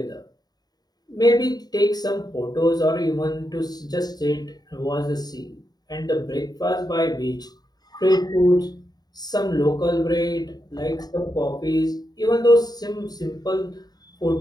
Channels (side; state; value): right; late; 0.19 ms